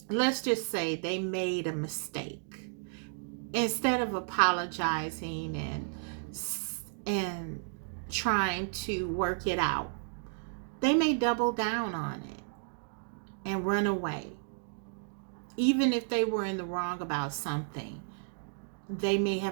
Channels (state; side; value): silent; left; digital silence